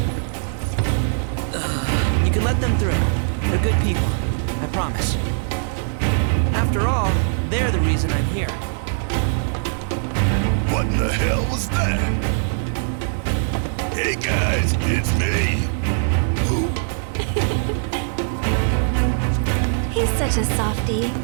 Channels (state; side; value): silent; left; digital silence